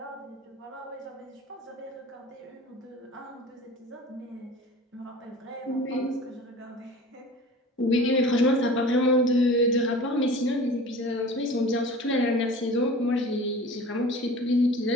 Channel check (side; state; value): both; normal; correlation 0.41